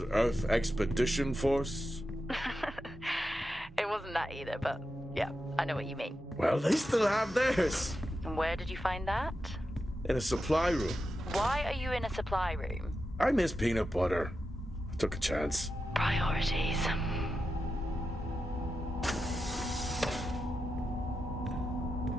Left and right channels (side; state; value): both; normal; correlation 0.89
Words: Expedition Force. It wasn't that either, but yeah, I know what you mean. Well, they still have theirs. And where did you find that? In a supply room. Why are you in a supply room? I miss peanut butter. I took a chance. Priorities.